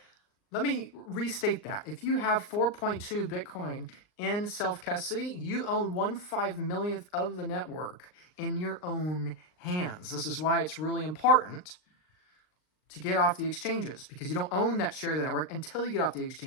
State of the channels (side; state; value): right; late; 39 ms